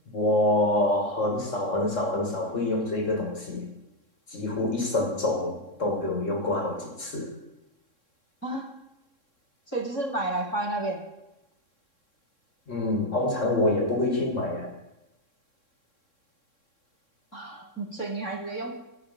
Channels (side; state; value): right; late; 3.6 ms